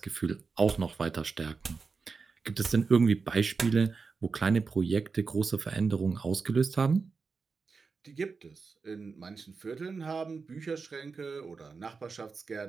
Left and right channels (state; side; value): quieter; left; 4.8 dB